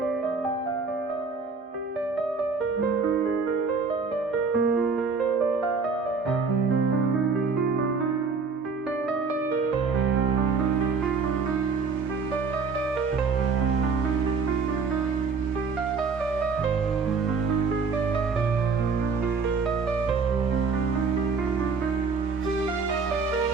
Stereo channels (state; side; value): quieter; left; 4.8 dB